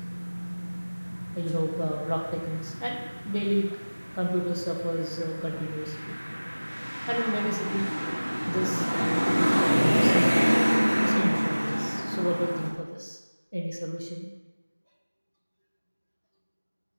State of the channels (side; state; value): both; inverted; correlation -1.00